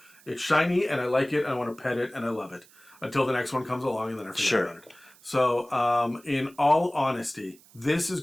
it's shiny and I like it and I want to pet it and I love it. Until the next one comes along and then I forget about it. So in all honesty, this is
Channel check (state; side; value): noise; right; hiss, 26 dB below the sound